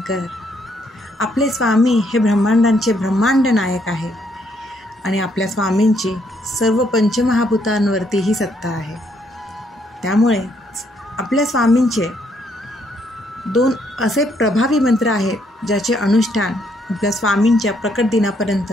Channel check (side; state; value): both; normal; correlation 0.71